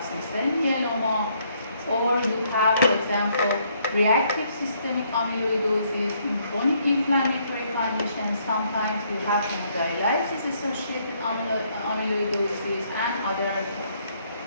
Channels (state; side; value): inverted; both; correlation -0.69